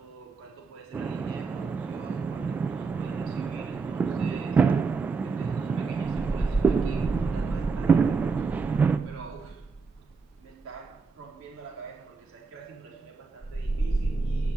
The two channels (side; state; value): left; quieter; 4.6 dB